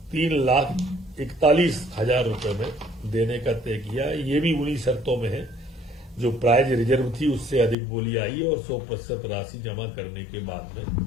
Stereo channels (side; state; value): right; drops out; at 7.8 s